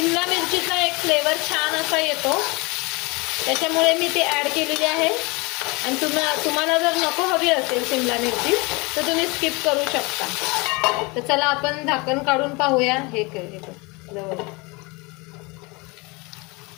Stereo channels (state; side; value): quieter; right; 26.7 dB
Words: मिरचीचा एक फ्लेवर छान असा येतो, त्याच्यामुळे मी ती ॲड केलेली आहे. आणि तुम्हाला जर नको हवी असेल शिमला मिरची तर तुम्ही स्किप करू शकता. तर चला आपण झाकण काढून पाहूया. हे जवळ